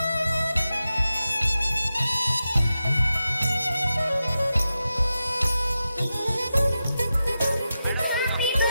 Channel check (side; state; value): both; inverted; correlation -0.91